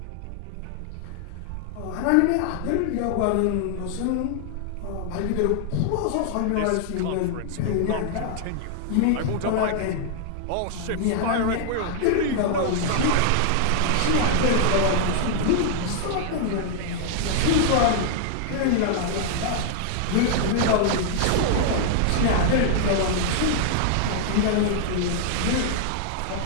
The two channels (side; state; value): both; different; correlation -0.01